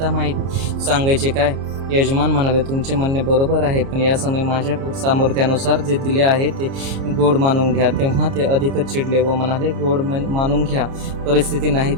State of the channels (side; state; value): left; late; 30 ms